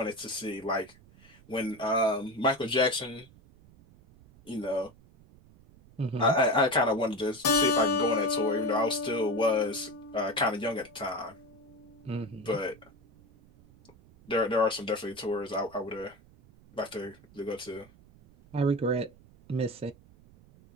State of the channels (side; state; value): right; noise; rumble, 25 dB below the sound